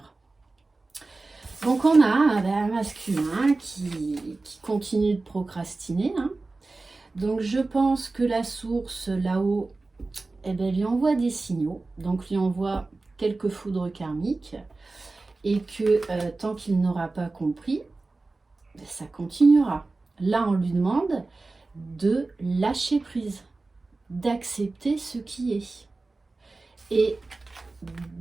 Donc on a un masculin qui continue de procrastiner. Hein. Donc je pense que la source là-haut, lui envoie des signaux. Donc lui envoie quelques foudres karmiques. Et que tant qu'il n'aura pas compris, ça continuera. Là on lui demande de lâcher prise, d'accepter ce qui est. Et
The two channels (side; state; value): left; quieter; 3.4 dB